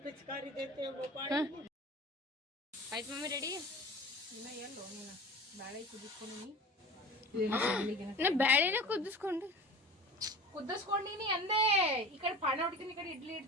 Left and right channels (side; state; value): both; normal; correlation 0.38